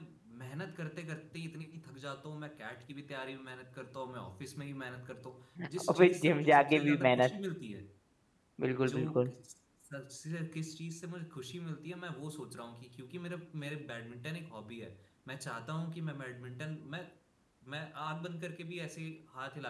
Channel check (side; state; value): both; identical; correlation 1.00